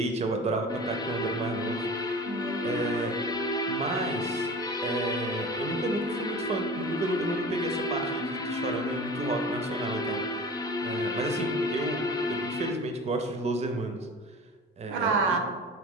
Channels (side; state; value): both; normal; correlation 0.37